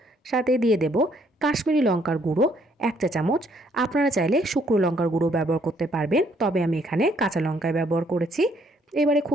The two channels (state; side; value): normal; both; correlation 0.67